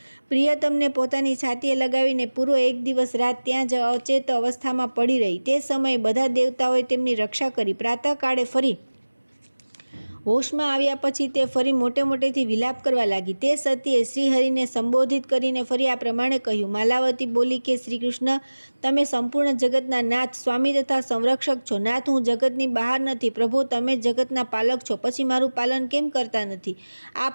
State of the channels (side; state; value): both; inverted; correlation -1.00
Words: પ્રિયતમને પોતાની છાતીએ લગાવીને પૂરો 1 દિવસ રાત ત્યાં જ અચેત અવસ્થામાં પડી રહી। તે સમયે બધા દેવતાઓએ તેમની રક્ષા કરી। પ્રાતઃકાળે ફરી હોશમાં આવ્યા પછી તે ફરી મોટે મોટેથી વિલાપ કરવા લાગી। તે સતીએ શ્રીહરિને સંબોધિત કરીને ફરી આ પ્રમાણે કહ્યું। માલાવતી બોલી કે શ્રી કૃષ્ણ, તમે સંપૂર્ણ જગતના નાથ, સ્વામી તથા સંરક્ષક છો। નાથ, હું જગતની બહાર નથી। પ્રભુ, તમે જગતના પાલક છો, પછી મારું પાલન કેમ કરતા નથી? આ